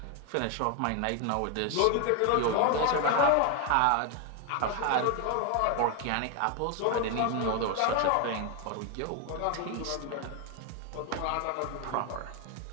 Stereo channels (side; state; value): both; different; correlation 0.01